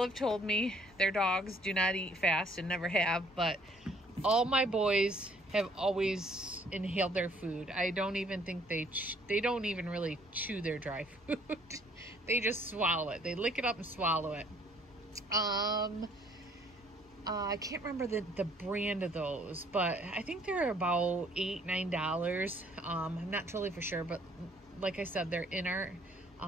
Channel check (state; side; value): normal; both; correlation 0.62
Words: have told me their dogs do not eat fast and never have, but all my boys have always inhaled their food. I don't even think they don't even really chew their dry food. They just swallow it. They lick it up and swallow it. I can't remember the brand of those, but I think they're about $8-9. I'm not totally for sure, but like I said, they're in our